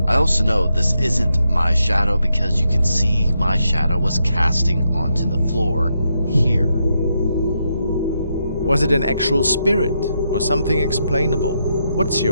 I also know this isn't my shadow because you can see my shadow was casting onto the floor here. Was it an actual spirit or something explainable? What's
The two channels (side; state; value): both; inverted; correlation -0.82